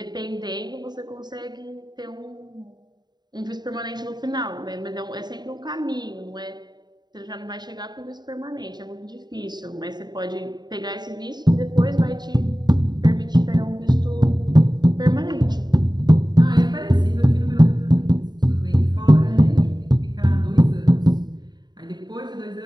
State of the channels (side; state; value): left; late; 0.20 ms